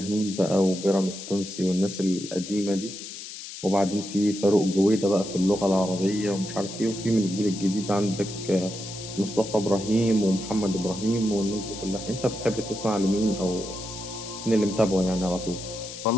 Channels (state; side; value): noise; left; hiss, 11 dB below the sound